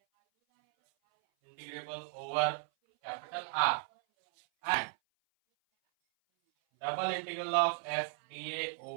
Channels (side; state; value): left; silent; 54 dB below the other